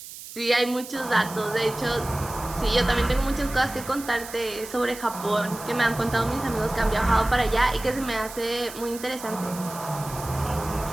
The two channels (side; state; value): right; noise; hiss, 13 dB below the sound